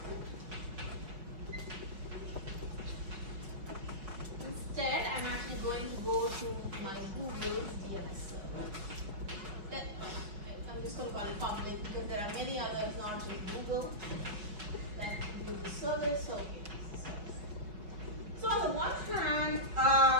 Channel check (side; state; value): left; late; 5.3 ms